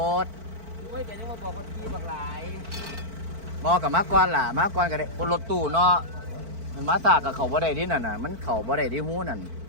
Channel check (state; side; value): late; left; 4.5 ms